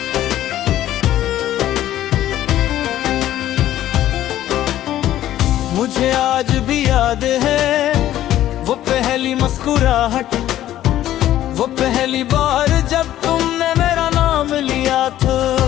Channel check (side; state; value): right; quieter; 13.0 dB